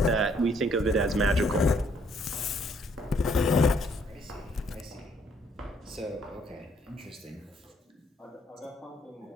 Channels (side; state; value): both; normal; correlation 0.67